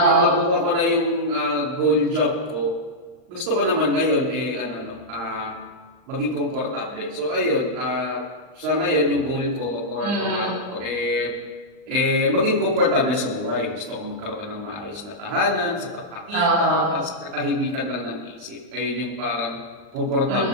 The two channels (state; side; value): late; left; 39 ms